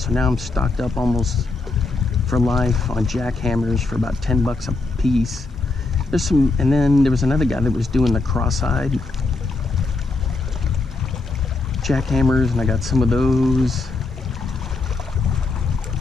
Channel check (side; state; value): right; quieter; 3.5 dB